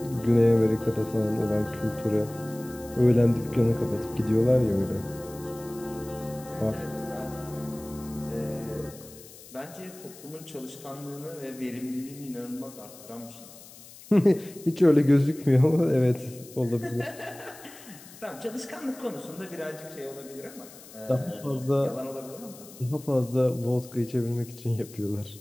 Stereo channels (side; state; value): left; noise; hiss, 19 dB below the sound